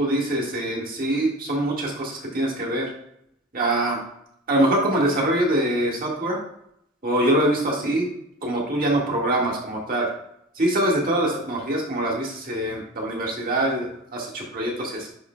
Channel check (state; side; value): normal; both; correlation 0.32